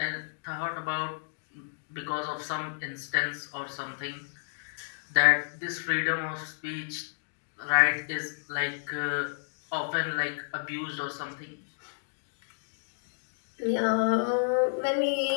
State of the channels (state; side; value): silent; right; digital silence